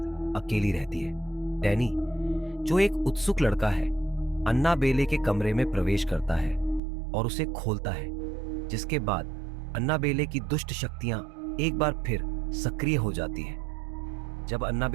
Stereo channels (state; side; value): drops out; left; at 6.8 s